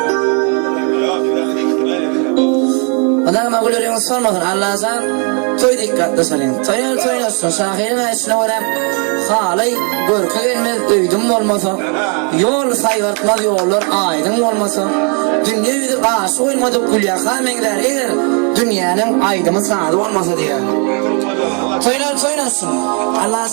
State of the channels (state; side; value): quieter; left; 37.5 dB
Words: adamı gülüyorsun sormadın Allah'tan toy dikkatli salın toyuyorsun şahirin içine varıp halay görkü gelmez öydüm olmasa yol sayvartmaz yollar aydın olmasa dünya yüzü karşı olmadık gülya kamengler eğer dünyanın aydımı sağdı olmasa diye toyuyorsun